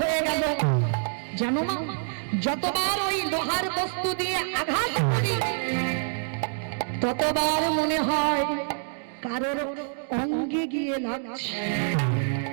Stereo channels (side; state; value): left; silent; digital silence